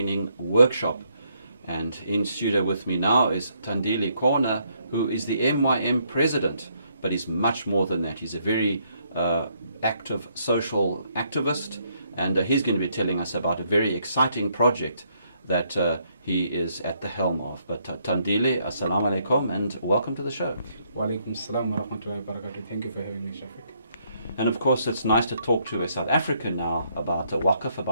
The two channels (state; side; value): inverted; both; correlation -0.72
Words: workshop. And in studio with me now is Thandile Kona, who is the MYM president, but he's much more than that. He's a very active social activist, and he's going to be telling us about a very exciting project that he is at the helm of. But Thandile, assalamu alaikum, and welcome to the show. Wa alaikum assalam wa rahmatullahi wa barakatuh. Thank you for having me, Shafiq. And of course, it's nice to talk to a South African now about Waqf,